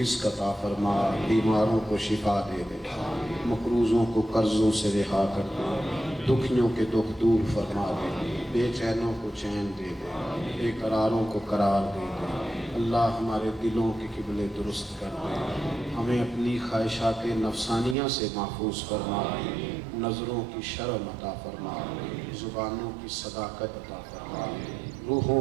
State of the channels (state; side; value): drops out; left; at 17.9 s